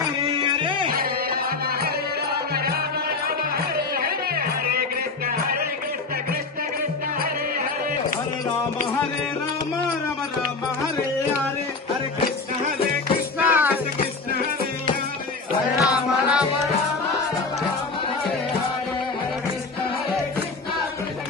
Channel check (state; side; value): quieter; right; 4.0 dB